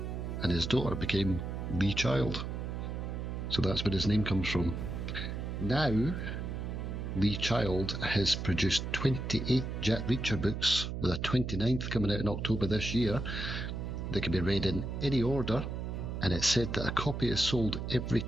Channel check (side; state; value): right; noise; hum, 4 dB below the sound